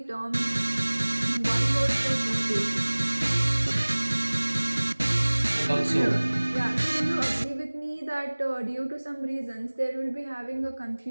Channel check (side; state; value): both; inverted; correlation -1.00